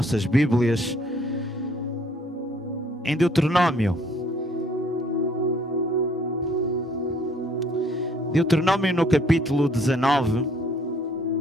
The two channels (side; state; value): both; normal; correlation 0.61